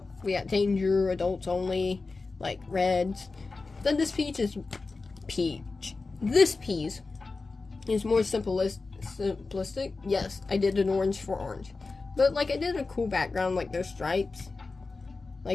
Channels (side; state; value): right; quieter; 3.9 dB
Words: We got danger, adults only, like reds. Then this peach is peach. This piece is more simplistic. Yes, I did an orange for orange. But, like, I did a cool background, like those stripes.